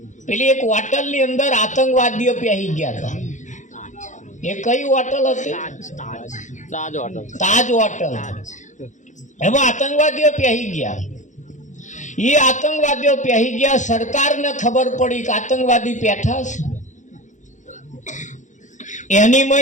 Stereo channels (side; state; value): right; late; 0.35 ms